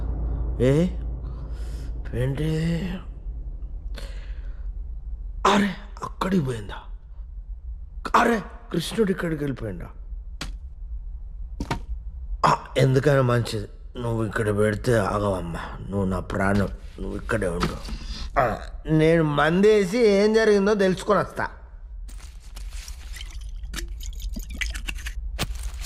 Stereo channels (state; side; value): identical; both; correlation 1.00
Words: ఏంటి అరే అక్కడికి పోయిందా? అరే కృష్ణుడు ఇక్కడికి వెళ్ళిపోయిందా? ఎందుకైనా మంచిది నువ్వు ఇక్కడ పెడితే ఆగవమ్మా. నువ్వు నా ప్రాణం, నువ్వు ఇక్కడే ఉండు. నేను మందేసి ఏం జరిగిందో తెలుసుకొని వస్తా.